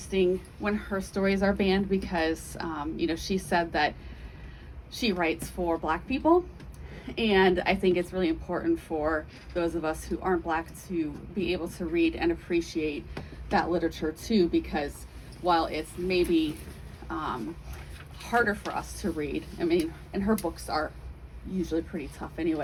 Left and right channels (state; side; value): identical; both; correlation 1.00